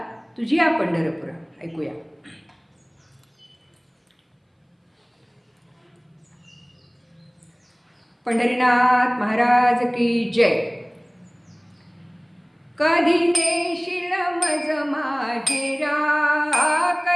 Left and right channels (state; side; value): identical; both; correlation 1.00